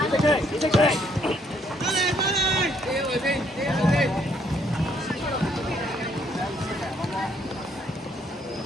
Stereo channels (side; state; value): both; normal; correlation 0.68